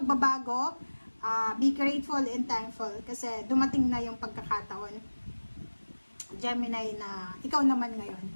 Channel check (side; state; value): both; inverted; correlation -1.00